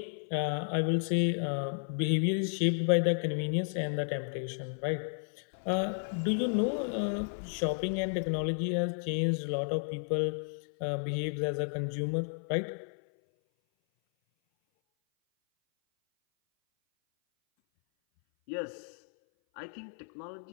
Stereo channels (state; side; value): silent; right; 56 dB below the other